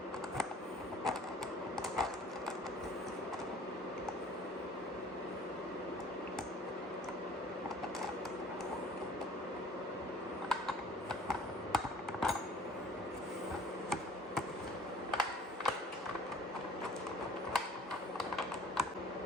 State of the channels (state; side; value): normal; both; correlation 0.51